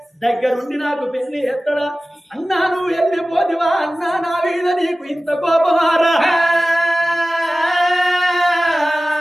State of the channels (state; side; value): normal; both; correlation 0.96